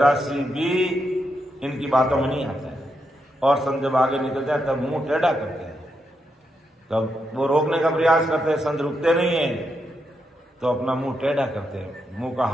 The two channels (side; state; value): both; normal; correlation 0.83